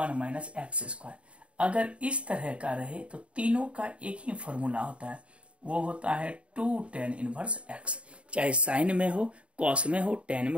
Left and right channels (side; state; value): left; late; 0.060 ms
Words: माइनस एक्स स्क्वायर। अगर इस तरह का रहे तो तीनों का एक ही फॉर्मूला होता है, वो होता है 2 टेन इनवर्स x। चाहे साइन में हो, कॉस में हो, टेन